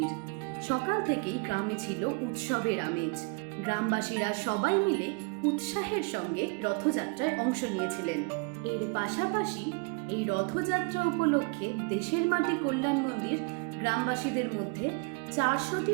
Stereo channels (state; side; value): quieter; left; 32.1 dB